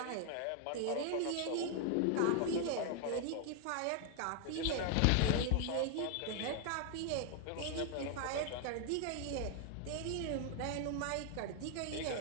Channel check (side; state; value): both; different; correlation 0.00